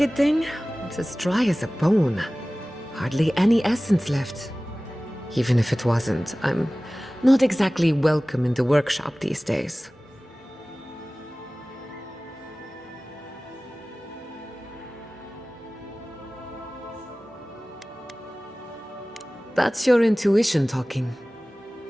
thing? It's as dry as a bone. Hardly any essence left. Even if it wasn't, I'm not exactly welcome in the workshop these days. That's your intuition talking.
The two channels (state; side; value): normal; both; correlation 0.98